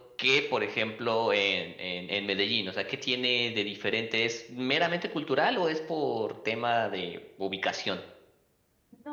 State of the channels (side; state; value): both; identical; correlation 1.00